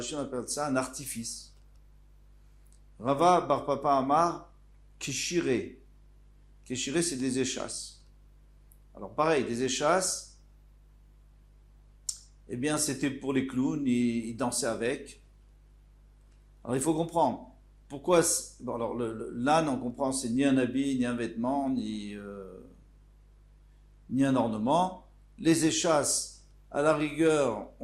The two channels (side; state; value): both; identical; correlation 1.00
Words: on appelle ça un artifice. Rava Bar Papa Amar, Kishire. Kishire, c'est des échasses. Alors pareil, des échasses, eh bien c'était pour les clowns, ils dansaient avec. Alors il faut comprendre, pourquoi, alors l'âne on comprend, c'est ni un habit, ni un vêtement, ni un ornement. Les échasses, à la rigueur,